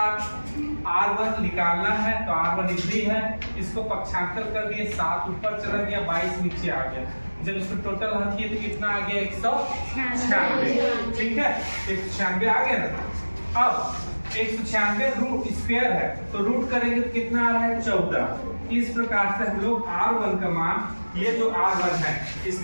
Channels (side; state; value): both; inverted; correlation -1.00